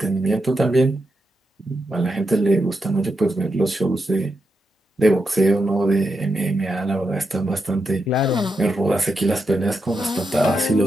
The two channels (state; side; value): normal; both; correlation 0.85